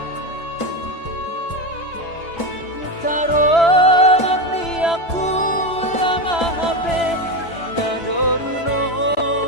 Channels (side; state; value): right; late; 3.0 ms